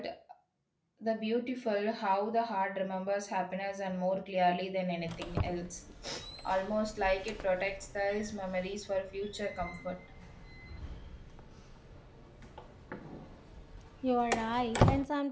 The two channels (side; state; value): both; identical; correlation 1.00